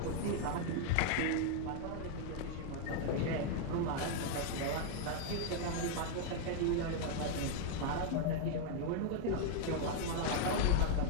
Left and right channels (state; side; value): different; both; correlation 0.00